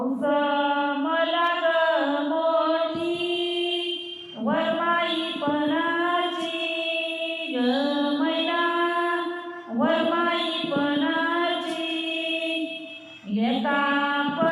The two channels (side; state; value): both; identical; correlation 1.00